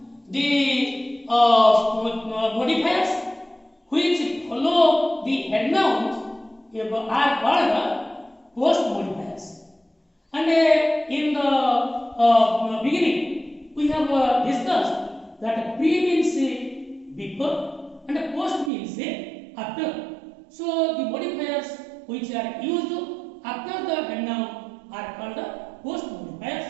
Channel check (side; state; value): left; drops out; at 18.7 s